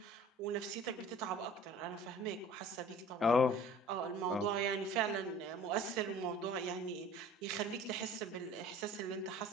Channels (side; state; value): both; normal; correlation 0.47